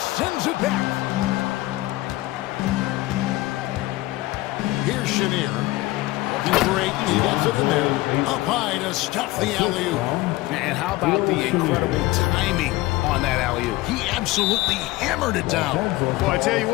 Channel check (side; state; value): right; quieter; 18.9 dB